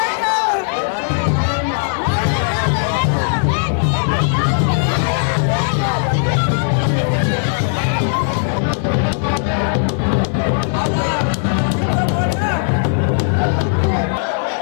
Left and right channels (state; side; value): silent; right; 56 dB below the other